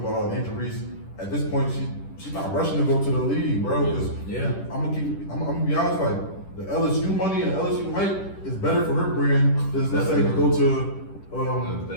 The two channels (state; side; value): late; right; 10 ms